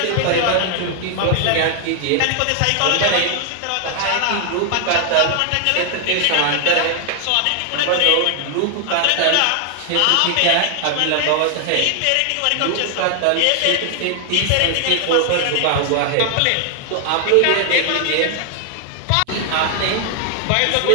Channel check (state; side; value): different; both; correlation 0.00